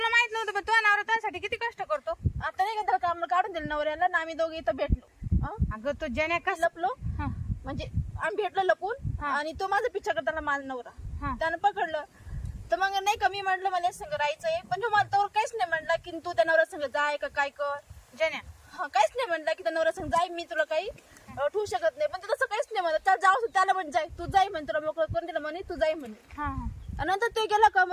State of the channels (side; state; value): both; identical; correlation 1.00